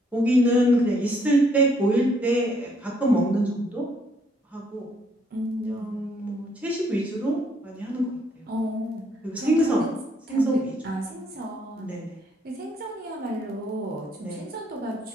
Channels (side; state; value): both; normal; correlation 0.69